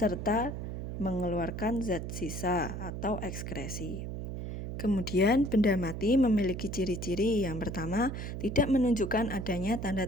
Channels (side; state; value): right; noise; hum, 6 dB below the sound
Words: mengeluarkan zat sisa atau ekskresi. Kemudian, benda mati memiliki ciri-ciri. Yang pertama, tidak menunjukkan adanya